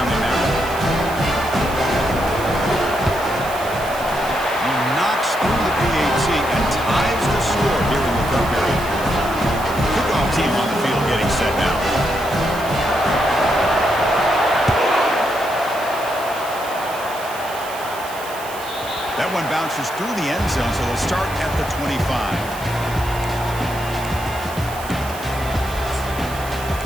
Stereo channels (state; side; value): noise; right; hiss, 15 dB below the sound